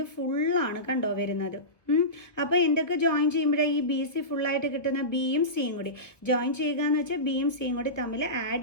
ഫുള്ളാണ് കണ്ടോ വരുന്നത്. അപ്പോൾ എന്തൊക്കെ ജോയിൻ ചെയ്യുമ്പോഴേ ഈ BC ഫുള്ളായിട്ട് കിട്ടുന്ന Bയും Cയും കൂടി ജോയിൻ ചെയ്യുക എന്ന് വെച്ചാൽ Bയും Cയും കൂടി തമ്മിൽ ആഡ്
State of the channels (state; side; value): late; right; 1.1 ms